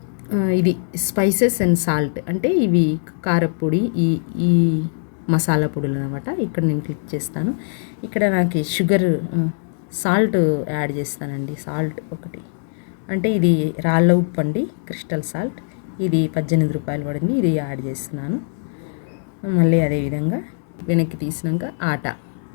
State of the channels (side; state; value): right; silent; digital silence